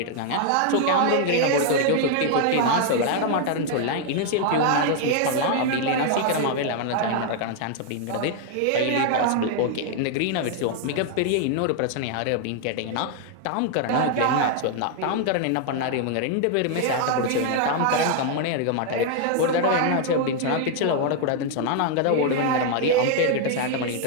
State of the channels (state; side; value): different; both; correlation 0.00